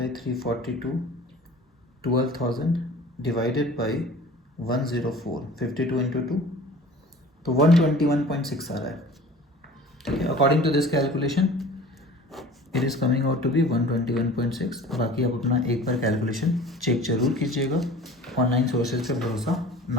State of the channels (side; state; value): both; normal; correlation 0.44